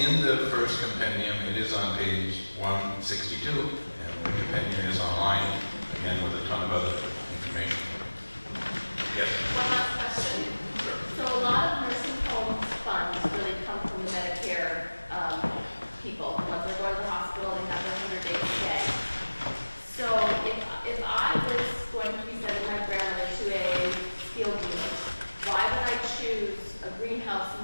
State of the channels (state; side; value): inverted; both; correlation -1.00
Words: the first compendium. It is on page 162, and the compendium is online, again with a ton of other information. Yes? One last question. So a lot of nursing homes funds really come from the Medicare people. Once they go to the hospital, they have their 100-day stay. So if I was going to be sending my grandmother to a skilled unit, why would I choose a greenhouse